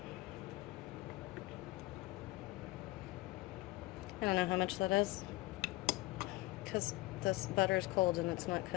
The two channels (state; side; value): quieter; right; 19.9 dB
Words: I don't know how much that is because this butter is cold and it's not